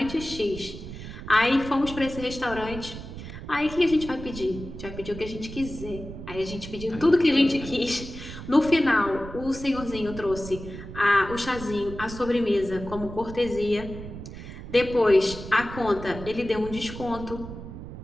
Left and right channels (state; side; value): noise; right; rumble, 11 dB below the sound